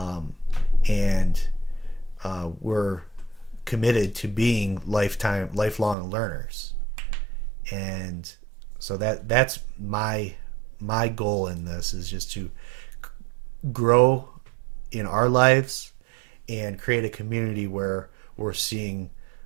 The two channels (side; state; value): left; drops out; at 6.0 s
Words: we're committed to being lifelong learners. And so that's my goal in this, is just to grow in our lives and create a community where we're seeing